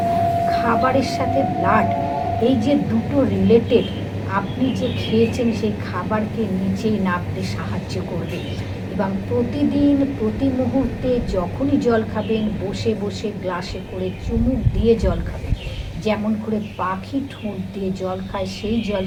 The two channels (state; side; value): identical; both; correlation 1.00